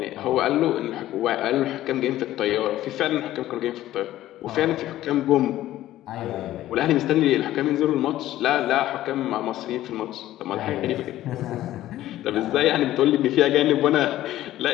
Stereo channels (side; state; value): right; quieter; 14.2 dB